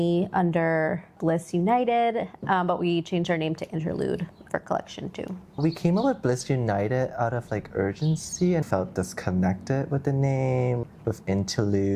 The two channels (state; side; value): identical; both; correlation 1.00